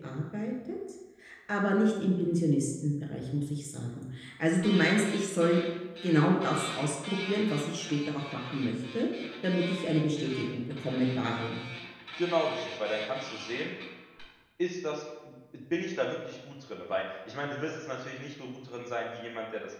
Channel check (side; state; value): both; identical; correlation 1.00